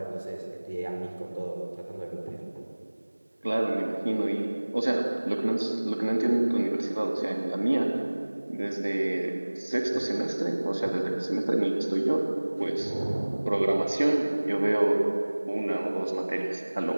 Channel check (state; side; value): inverted; both; correlation -1.00